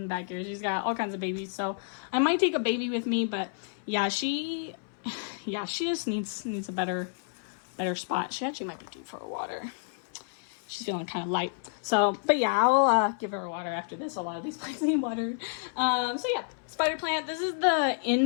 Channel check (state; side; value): silent; right; 58 dB below the other